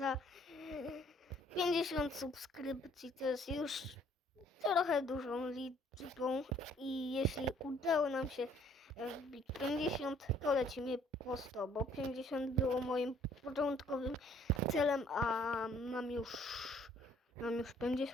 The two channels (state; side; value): normal; both; correlation 0.60